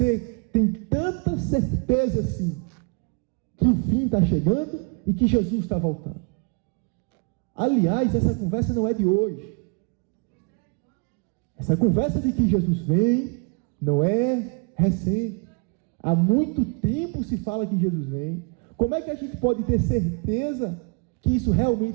tem tanta certeza assim, que o fim está chegando e que Jesus está voltando? Aliás, essa conversa não é de hoje. Essa conversa de que Jesus vem não é recente. Há muito tempo se fala que Jesus vem. Como é que a gente pode ter certeza que isso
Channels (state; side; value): quieter; left; 34.6 dB